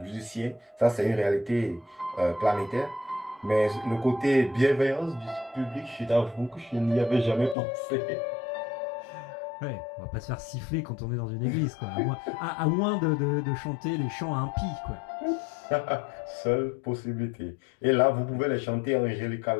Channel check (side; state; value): right; drops out; at 7.6 s